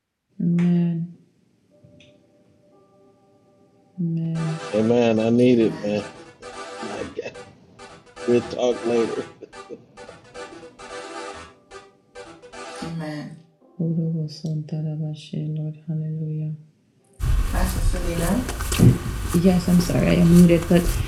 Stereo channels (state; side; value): identical; both; correlation 1.00